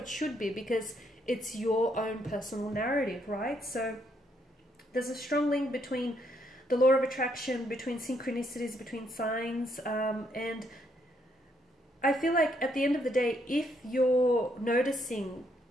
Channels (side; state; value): both; normal; correlation 0.73